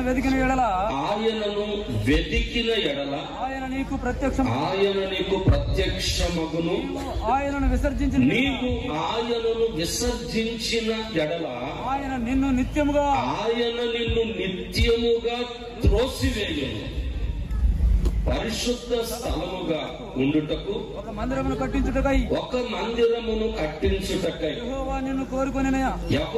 వెదికిన ఎడల ఆయన నీకు ప్రత్యక్షమగును. ఆయనను విసర్జించిన ఎడల ఆయన నిన్ను నిత్యముగా త్రోసివేయును. పరిశుద్ధ స్థలముగా ఉండుటకు ఒక మందిరమును కట్టించుటకై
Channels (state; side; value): identical; both; correlation 1.00